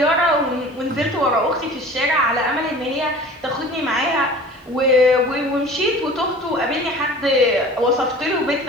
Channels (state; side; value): normal; both; correlation 0.42